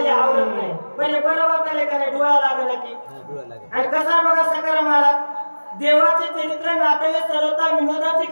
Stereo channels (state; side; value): inverted; both; correlation -1.00